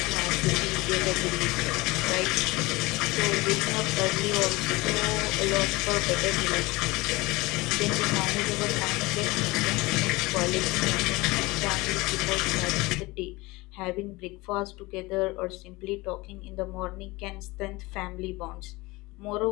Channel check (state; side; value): quieter; right; 22.4 dB